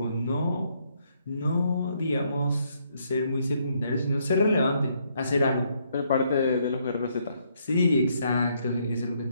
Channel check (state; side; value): inverted; both; correlation -0.72